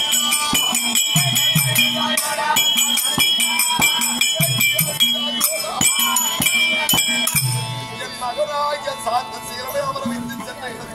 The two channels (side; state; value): both; identical; correlation 1.00